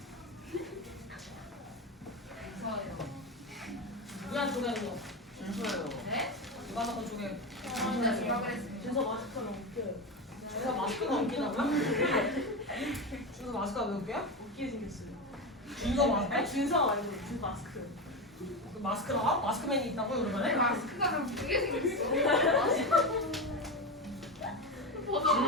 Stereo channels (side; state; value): both; normal; correlation 0.18